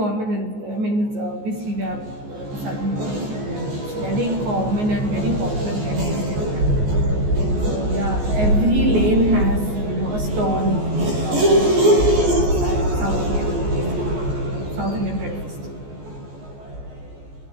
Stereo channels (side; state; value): left; late; 14 ms